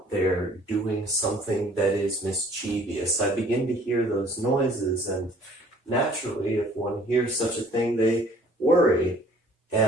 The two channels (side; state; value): both; normal; correlation 0.54